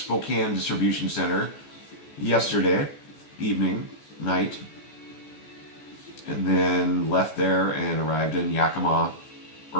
distribution center yesterday night, and then left there and arrived in Yakima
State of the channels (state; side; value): late; right; 14 ms